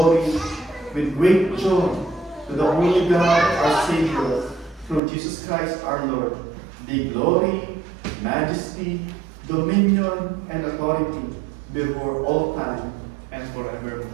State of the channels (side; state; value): left; drops out; at 5.0 s